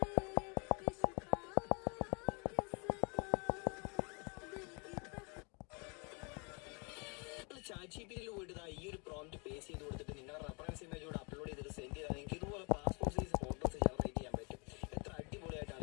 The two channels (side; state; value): right; quieter; 32.3 dB